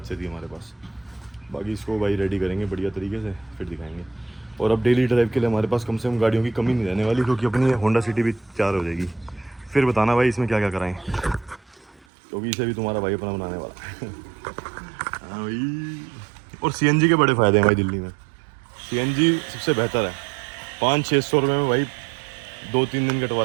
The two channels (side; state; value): left; drops out; at 12.1 s